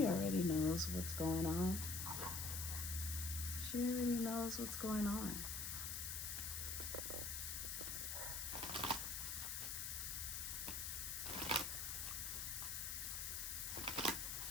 already knows what's going on. She already knows what's going on.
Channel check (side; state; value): left; noise; hiss, 2 dB below the sound